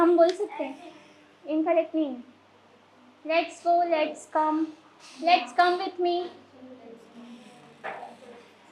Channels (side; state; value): both; identical; correlation 1.00